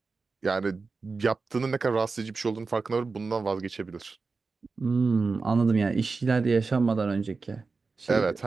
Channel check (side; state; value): left; quieter; 4.3 dB